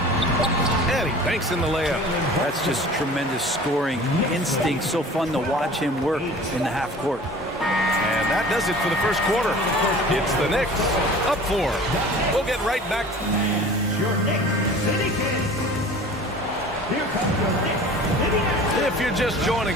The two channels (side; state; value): both; normal; correlation 0.43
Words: And he banks in the layup. That's just tremendous scoring instinct. So fun to watch him work in the half court. And that does it for the first quarter. It's the Knicks up 4. We'll get right back. Your Knicks City Kings. Here comes your Knicks City Kings. If you're just